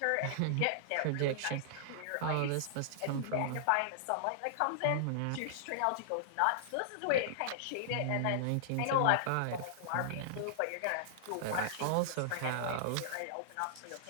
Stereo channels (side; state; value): both; different; correlation -0.01